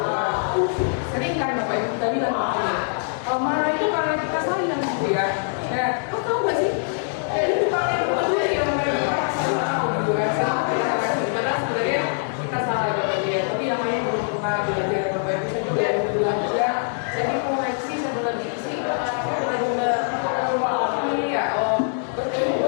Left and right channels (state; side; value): silent; right; 63 dB below the other